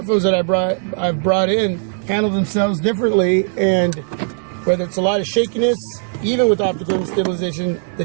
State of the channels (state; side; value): silent; left; digital silence